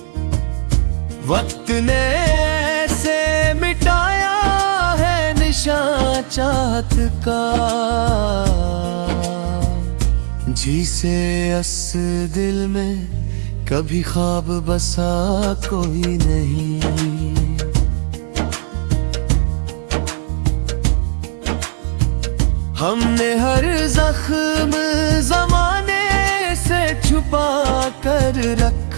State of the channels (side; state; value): left; silent; digital silence